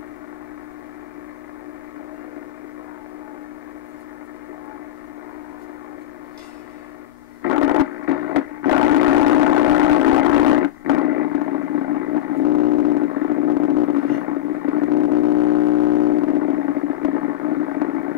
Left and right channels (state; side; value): quieter; right; 13.1 dB